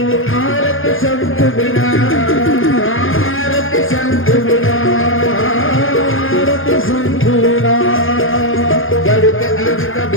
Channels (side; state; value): right; late; 0.59 ms